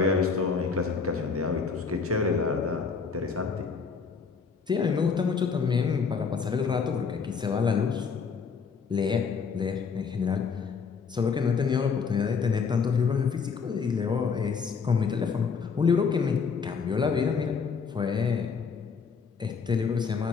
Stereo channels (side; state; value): right; quieter; 5.6 dB